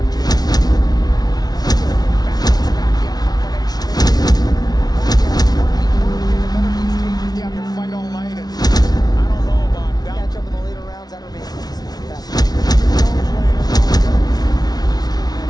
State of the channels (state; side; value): late; right; 0.19 ms